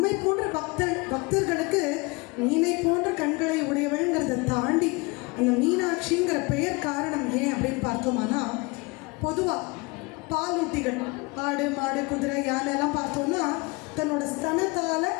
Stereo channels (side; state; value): right; quieter; 26.3 dB